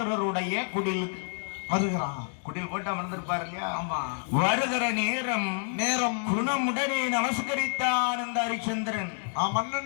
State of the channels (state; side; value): silent; right; 59 dB below the other